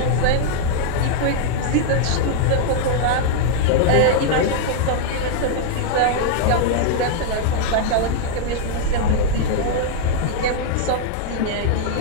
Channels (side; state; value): both; different; correlation -0.01